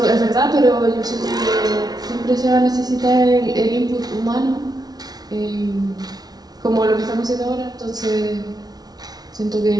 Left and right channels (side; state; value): left; late; 0.19 ms